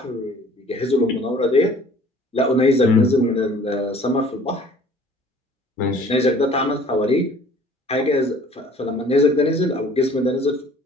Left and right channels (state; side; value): normal; both; correlation 0.52